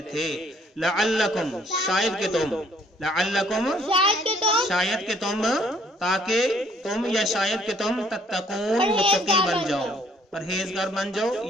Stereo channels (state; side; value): normal; both; correlation 0.63